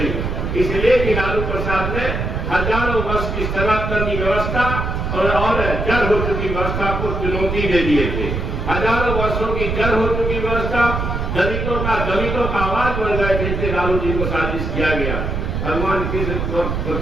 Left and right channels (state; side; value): noise; right; rumble, 2 dB below the sound